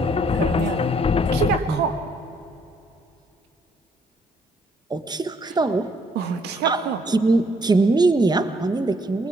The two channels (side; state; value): both; normal; correlation 0.67